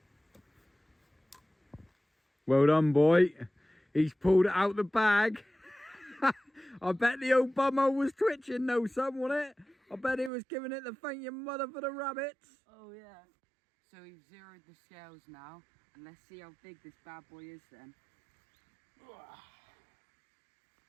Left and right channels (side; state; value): left; drops out; at 10.3 s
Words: Well done, boy. He's pulled it out the bag. I bet the old bummo was twitching though, son, wasn't it? I bet he was giving it the thank your mother for the rabbits. Oh, yeah. So we've zeroed the scales now, and let's see how big this bad boy is then.